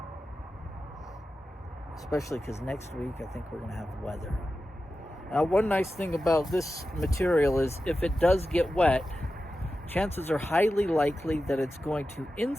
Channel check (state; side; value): normal; both; correlation 0.92